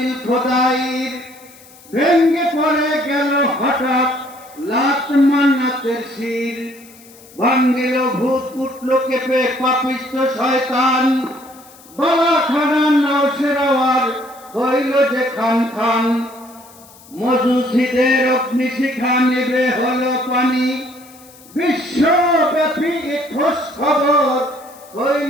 খোদাইর, ভেঙ্গে পড়ে গেল হঠাৎ লাত মান্নাতের শির। ভাঙ্গিল ভূত উঠল কেঁপে পাপিষ্ঠ শয়তান, গলা খানা নওশেরাওয়ার হইল যে খান খান। মজুসিদের অগ্নিশিখা নেবে হলো পানি, বিশ্বব্যাপী খোঁজ খবর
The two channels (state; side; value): noise; left; hiss, 24 dB below the sound